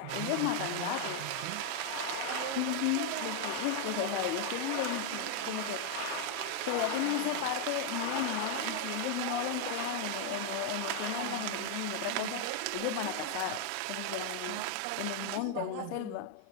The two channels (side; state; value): both; different; correlation 0.00